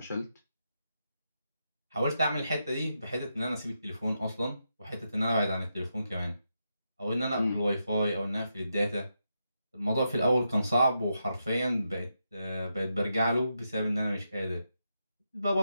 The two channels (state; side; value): inverted; both; correlation -0.85